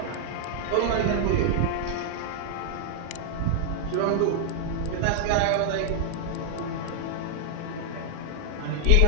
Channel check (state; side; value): different; both; correlation -0.01